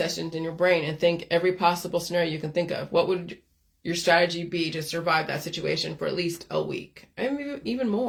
in your brain and think every possible scenario you can think of. What would your strategy be to survive that situation for at least a week? And maybe even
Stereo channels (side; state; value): both; identical; correlation 1.00